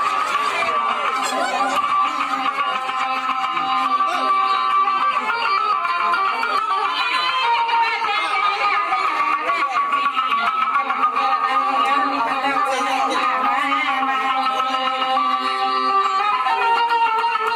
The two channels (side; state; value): both; identical; correlation 1.00